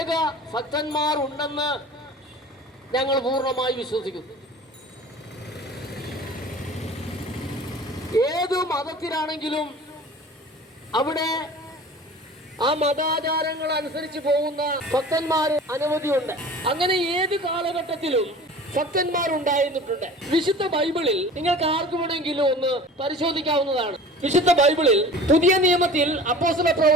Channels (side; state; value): both; normal; correlation 0.41